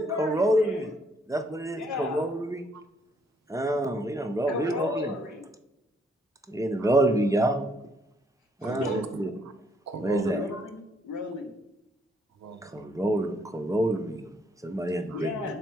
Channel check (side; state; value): both; normal; correlation 0.69